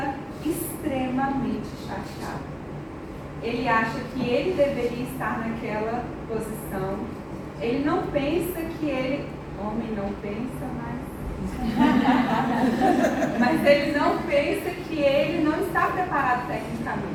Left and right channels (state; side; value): identical; both; correlation 1.00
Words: extremamente chateado. Ele acha que ele deveria estar naquela posição. Ele não pensa que ele... Homem não pensa, mas ele não pensa que ele não está preparado